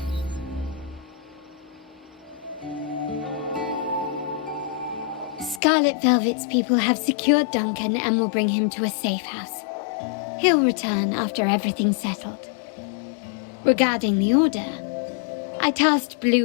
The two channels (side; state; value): right; drops out; at 5.6 s